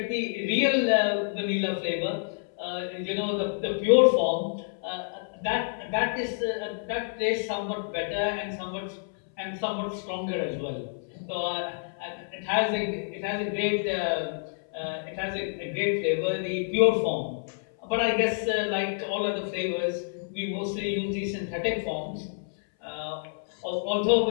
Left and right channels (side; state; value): right; silent; 59 dB below the other